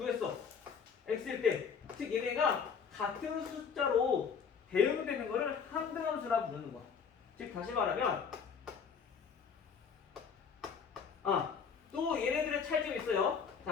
x일 때. 즉 얘네가 같은 숫자로 대응되는 거를 항등함수라 부르는 거야. 즉 다시 말하면 또 얘네들의 차이점이 있어요.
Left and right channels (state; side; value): quieter; right; 6.3 dB